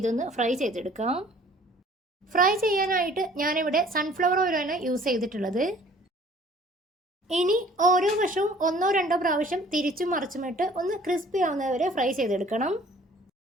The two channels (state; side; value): normal; both; correlation 0.53